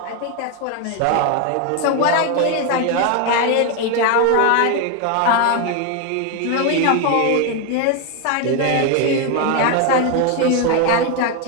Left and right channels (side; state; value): both; different; correlation 0.01